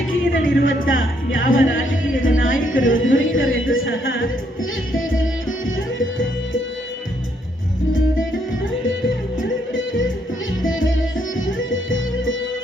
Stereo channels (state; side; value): normal; both; correlation 0.72